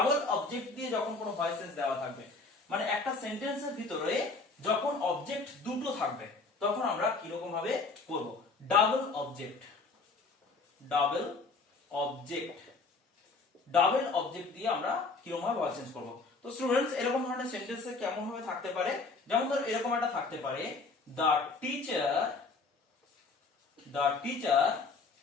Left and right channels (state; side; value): quieter; right; 4.0 dB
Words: অবজেক্ট দিয়ে যখন কোনো ভয়েস চেঞ্জ দেওয়া থাকবে মানে একটা সেন্টেন্সের ভিতরে যখন অবজেক্ট দুটো থাকবে তখন আমরা কি রকম ভাবে করব ডাবল অবজেক্ট দিয়ে আমরা কিরকম ভাবে ভয়েস চেঞ্জ করব তো স্টুডেন্টস এরকম ধরনের সেন্টেন্সে কেমন ভাবে থাকতে পারে যেমন ধর এরকম একটা থাকতে পারে the teacher